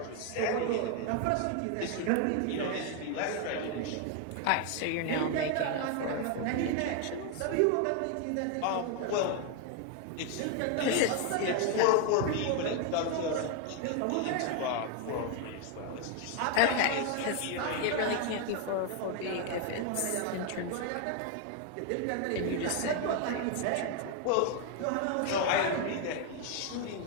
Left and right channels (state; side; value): different; both; correlation 0.01